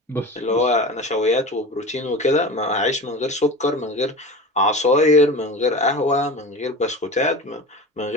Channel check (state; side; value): normal; both; correlation 0.32